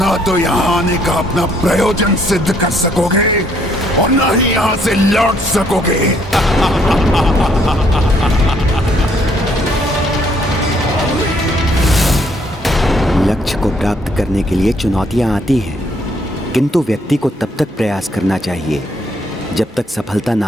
ना तो यहाँ आने का अपना प्रयोजन सिद्ध कर सकोगे और ना ही यहाँ से लौट सकोगे। लक्ष्य को प्राप्त करने के लिए चुनौतियां आती हैं, किंतु व्यक्ति को तब तक प्रयास करना चाहिए जब तक सफलता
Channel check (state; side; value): normal; both; correlation 0.67